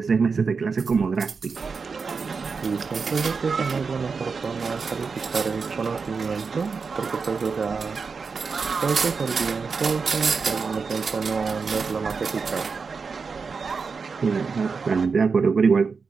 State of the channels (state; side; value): quieter; left; 5.0 dB